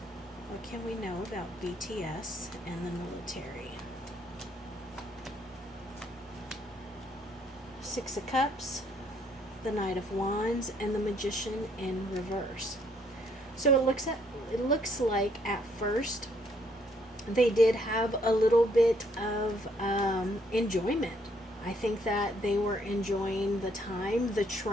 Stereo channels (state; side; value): normal; both; correlation 0.68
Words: What can we know about BTS and the military? Six of Cups, the Knight of Wands, and the Magician in reverse. So it looks like at first they did have a little bit of enjoyment. I think that they were enjoying the time, the